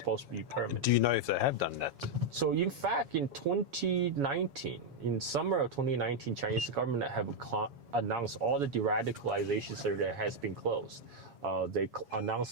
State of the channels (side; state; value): left; late; 7.2 ms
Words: to be permanent. Do you know if they have done that? So in fact, in 2019, in summer of 2019, Chinese government have announced all the de-radicalization center has been closed. They